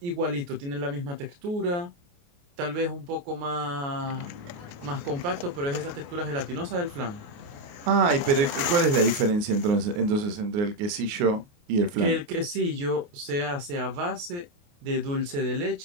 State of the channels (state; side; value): late; left; 28 ms